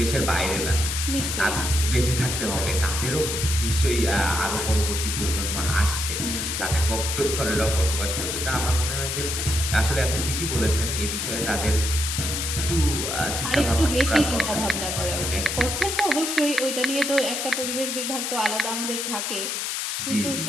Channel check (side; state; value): left; noise; hiss, 2 dB below the sound